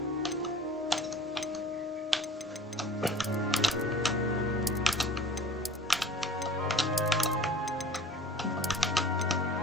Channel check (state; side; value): normal; both; correlation 0.45